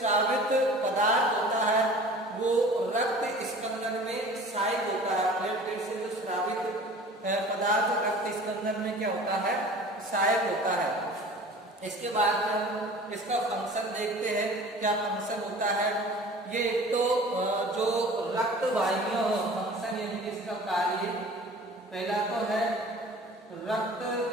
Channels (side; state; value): both; normal; correlation 0.44